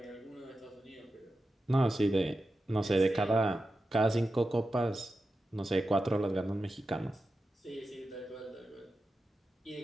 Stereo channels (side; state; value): both; normal; correlation 0.91